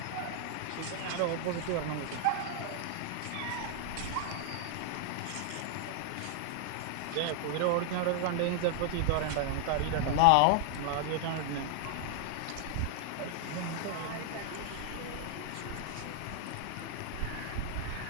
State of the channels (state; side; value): different; both; correlation 0.00